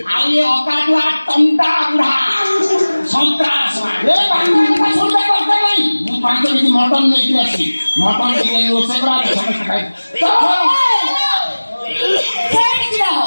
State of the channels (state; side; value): inverted; both; correlation -1.00